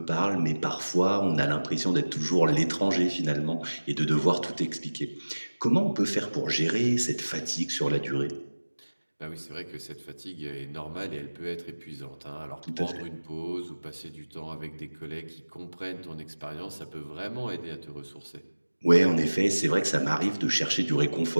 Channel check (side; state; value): both; inverted; correlation -1.00